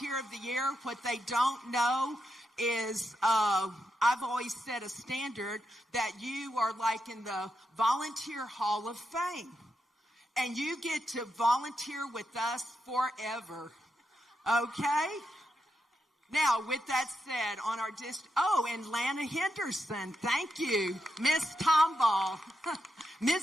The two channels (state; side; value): normal; both; correlation 0.85